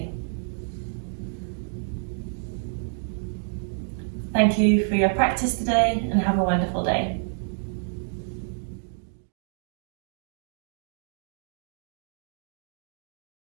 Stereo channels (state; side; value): silent; left; digital silence